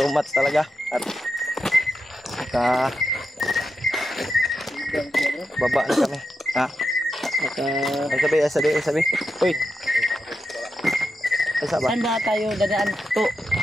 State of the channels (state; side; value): normal; both; correlation 0.87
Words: much talaga. At baba na kami. Ha? Sabi. Uy. Asa ba? Saan ba tayo dadaan to?